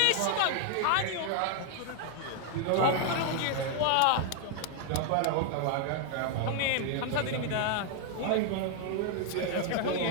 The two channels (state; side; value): different; both; correlation 0.00